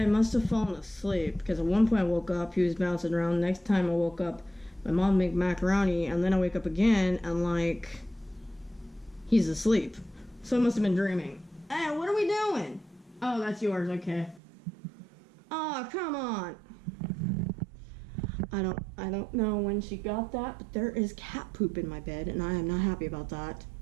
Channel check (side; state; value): left; drops out; at 14.4 s